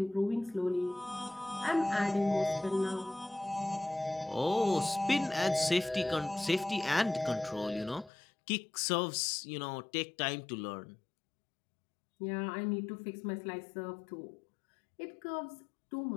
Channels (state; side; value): drops out; right; at 8.1 s